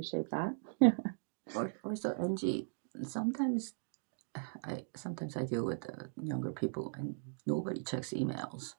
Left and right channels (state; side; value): silent; left; digital silence